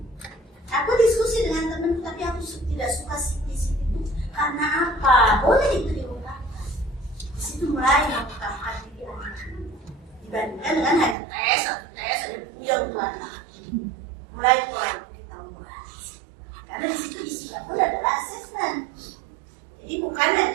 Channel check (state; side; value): drops out; left; at 11.2 s